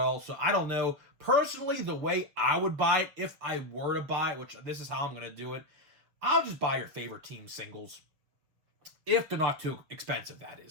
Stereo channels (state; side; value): late; left; 7.4 ms